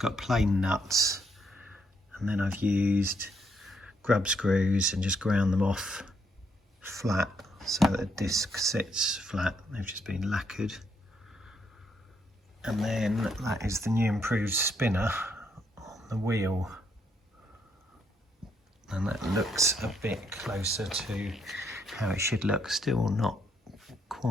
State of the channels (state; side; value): normal; both; correlation 0.74